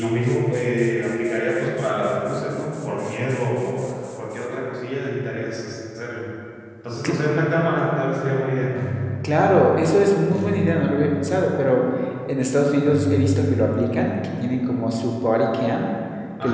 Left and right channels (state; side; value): identical; both; correlation 1.00